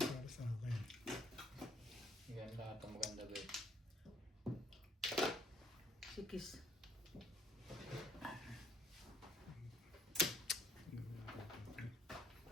para sa akin. Yan lahat ang maganda ba. Sikis.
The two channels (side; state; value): both; normal; correlation 0.63